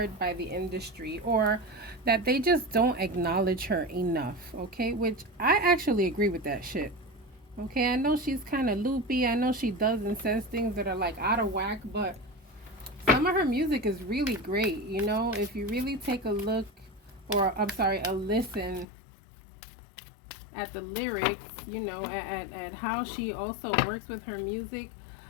by the industry, or that they just don't acknowledge her enough, okay? Which I actually agree with that shit. Okay, I know she's kind of loopy. I know she does and says things that are like out of whack, but some of her music is really great, you know? If you really take a look, or I'm sorry, a listen at the lyrics, you know, at how she also works with her music.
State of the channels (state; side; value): drops out; right; at 18.9 s